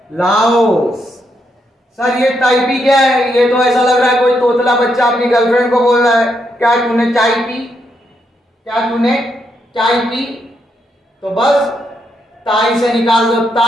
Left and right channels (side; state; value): both; normal; correlation 0.79